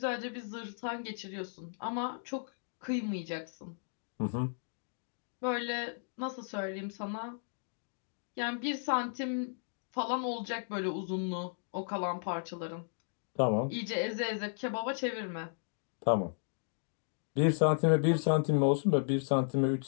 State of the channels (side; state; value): right; silent; digital silence